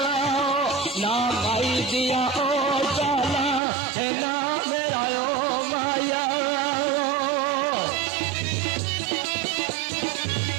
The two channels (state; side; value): drops out; left; at 3.6 s